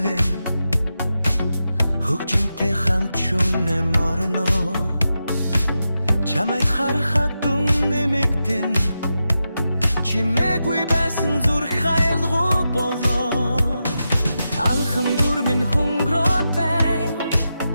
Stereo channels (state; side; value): inverted; both; correlation -0.89